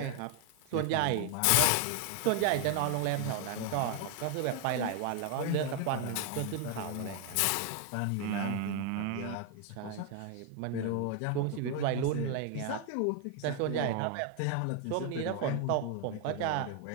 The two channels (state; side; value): different; both; correlation 0.00